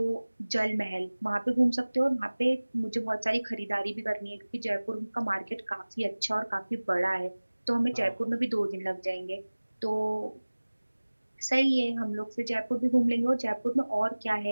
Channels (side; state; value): both; inverted; correlation -1.00